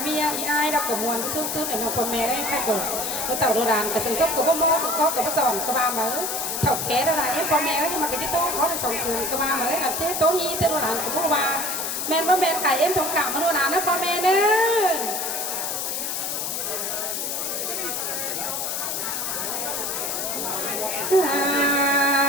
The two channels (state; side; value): noise; left; hiss, 2 dB below the sound